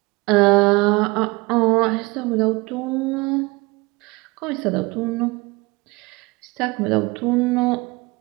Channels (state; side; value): quieter; left; 24.4 dB